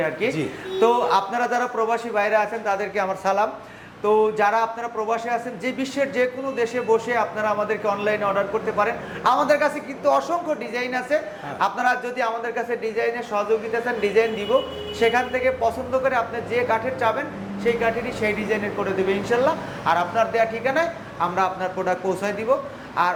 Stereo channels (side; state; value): both; identical; correlation 1.00